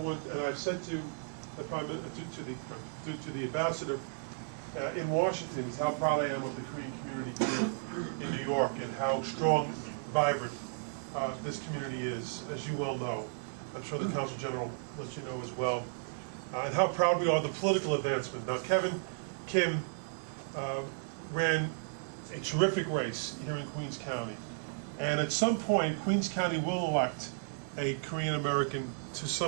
and I've said to the to the ambassador in Washington, is how proud I am of the Korean community here in New York and how strong, vibrant this community is, as you well know. I'm sure the Consul General lets you know as well. And how proud we are of the political advancement. Now, Kevin Kim ran a terrific race here in Queens County. And at some point, Queens County will elect a Korean American to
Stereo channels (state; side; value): silent; left; 55 dB below the other